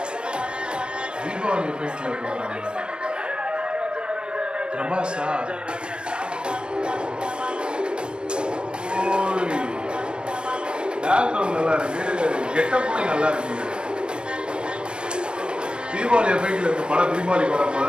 தீபாவளி எஃபெக்ட்ல இருக்கிறாங்க. பிரபாஸா பேக்ரவுண்ட் நல்லா இருக்கு, கெட்டப்புமே நல்லா இருக்கு. தீபாவளி எஃபெக்ட்ல இருக்க படம் தீபாவளிக்கு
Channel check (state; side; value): late; left; 0.048 ms